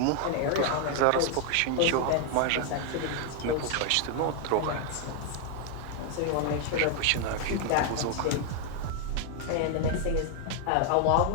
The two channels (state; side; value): different; both; correlation 0.00